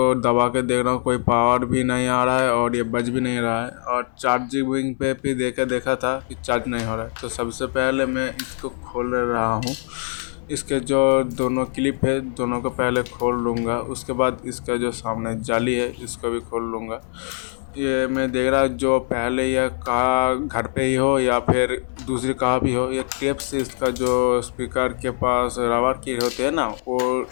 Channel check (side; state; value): right; silent; 64 dB below the other